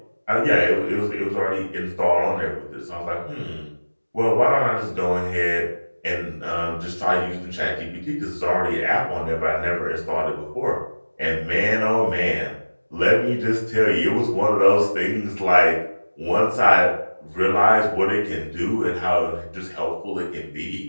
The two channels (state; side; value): inverted; both; correlation -1.00